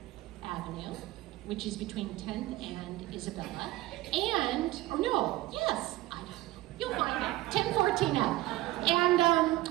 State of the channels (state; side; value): quieter; left; 17.6 dB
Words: Avenue, which is between 10th and Isabella. And, or no, yes, I don't know. You'll find it, 1014 F. And,